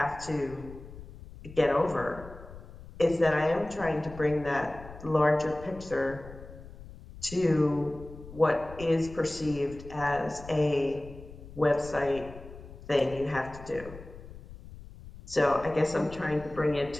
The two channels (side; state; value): left; noise; rumble, 16 dB below the sound